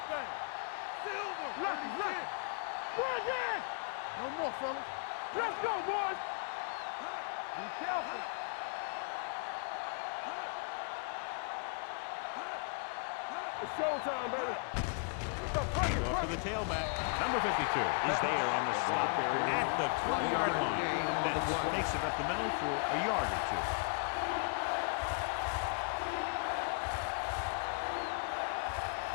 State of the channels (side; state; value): right; quieter; 39.2 dB